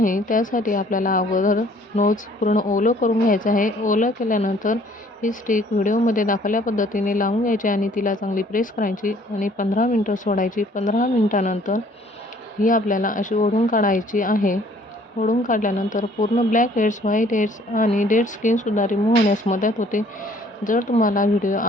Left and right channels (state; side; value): normal; both; correlation 0.58